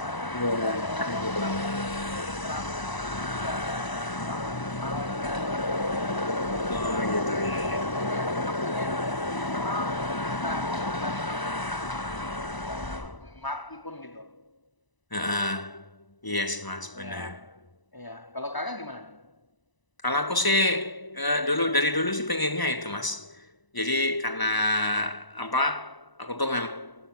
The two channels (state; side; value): late; right; 1.0 ms